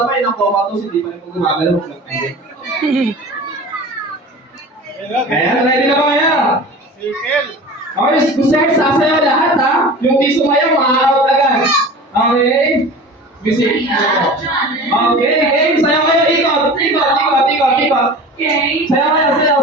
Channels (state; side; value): normal; both; correlation 0.37